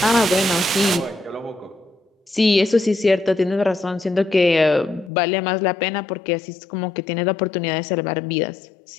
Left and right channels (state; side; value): drops out; right; at 5.1 s